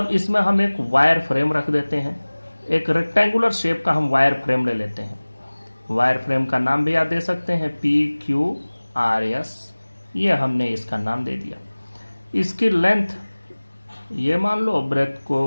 इसमें हम एक वायर फ्रेम रख देते हैं, एक रेक्टेंगुलर शेप का हम वायर फ्रेम ले लेते हैं। वायर फ्रेम का नाम भी आप दे सकते हैं PQRS, ये हमने इसका नाम दे दिया। इसकी लेंथ ये मान लो, ब्रेथ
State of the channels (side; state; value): both; inverted; correlation -1.00